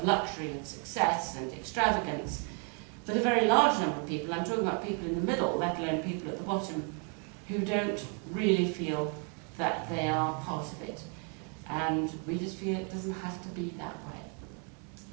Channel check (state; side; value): quieter; left; 38.7 dB